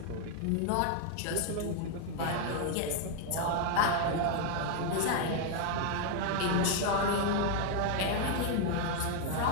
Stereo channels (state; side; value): different; both; correlation 0.00